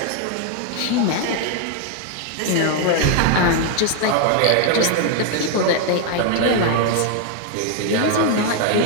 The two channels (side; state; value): both; different; correlation 0.00